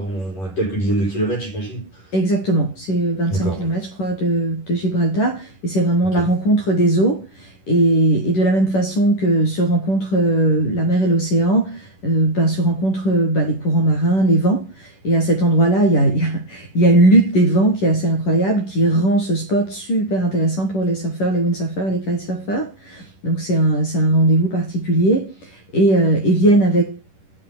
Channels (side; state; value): right; late; 10 ms